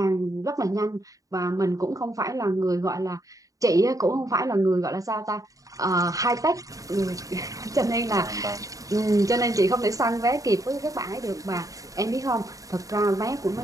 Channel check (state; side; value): late; left; 0.16 ms